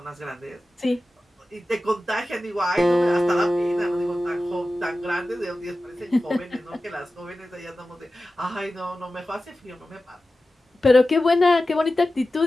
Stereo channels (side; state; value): both; normal; correlation 0.94